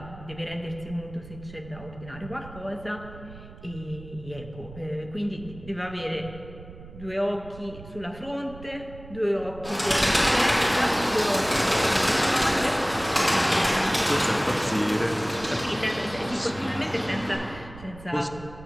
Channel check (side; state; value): right; noise; rumble, 16 dB below the sound